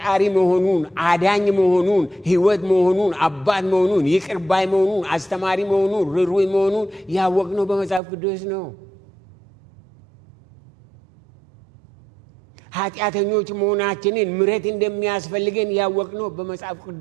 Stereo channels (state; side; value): drops out; left; at 8.0 s